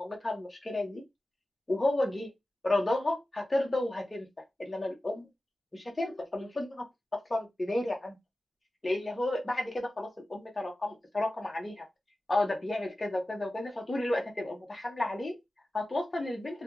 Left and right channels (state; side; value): normal; both; correlation 0.95